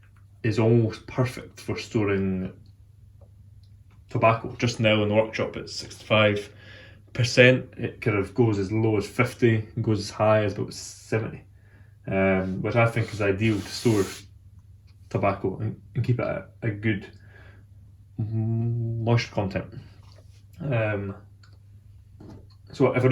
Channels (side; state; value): both; identical; correlation 1.00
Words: is almost perfect for storing tobacco. Just now in the workshop it's 65%. It kind of goes as low as 50 and goes as high as about 70, which I think is ideal to store tobacco and keep it at a good moisture content. So if I